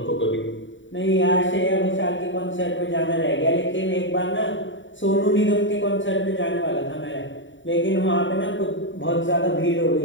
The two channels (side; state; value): right; late; 0.55 ms